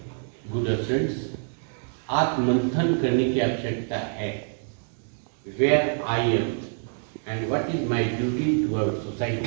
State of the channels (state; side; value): silent; left; 61 dB below the other